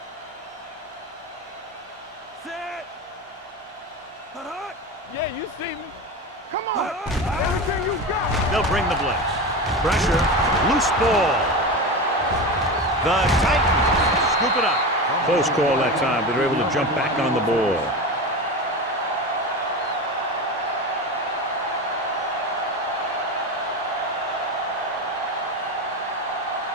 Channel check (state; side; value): normal; both; correlation 0.24